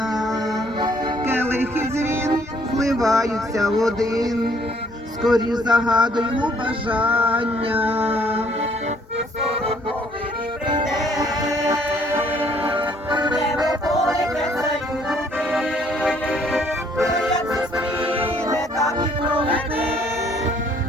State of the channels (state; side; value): normal; both; correlation 0.63